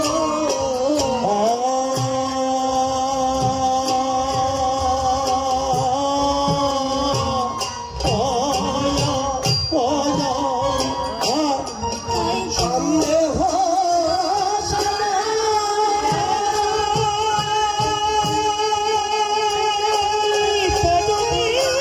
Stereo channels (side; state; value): both; identical; correlation 1.00